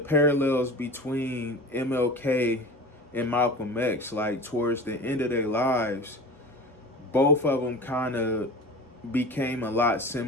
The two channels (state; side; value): normal; both; correlation 0.35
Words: parallels between MLK and Malcolm X, like towards the end of their lives, both of them kind of became a lot